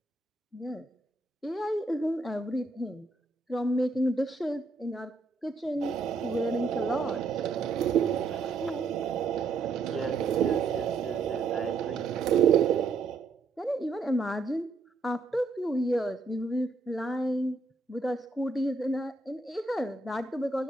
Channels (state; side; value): quieter; left; 3.9 dB